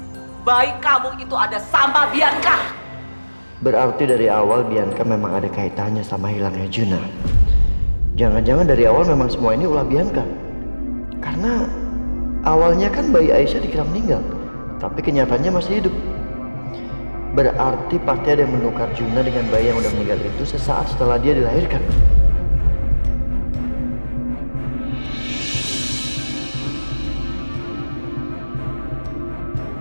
Bayi kamu itu ada sama Bianca. Berarti dari awal Bianca memang ada kaitannya sama hilangnya Juna. Jangan-jangan dari awal memang semua ini ulah Bianca. Karena awalnya kan bayi Aisyah dikira meninggal, tapi kenyataannya masih hidup. Berarti pasti ada yang menukar Juna dengan bayi yang udah meninggal itu sesaat setelah dia dilahirkan.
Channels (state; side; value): inverted; both; correlation -1.00